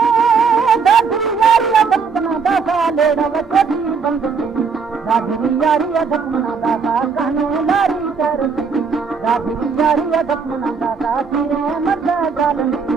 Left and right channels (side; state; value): left; quieter; 5.5 dB